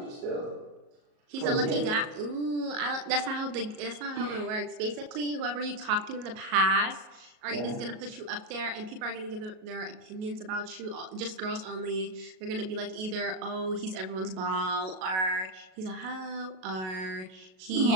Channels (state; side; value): late; left; 38 ms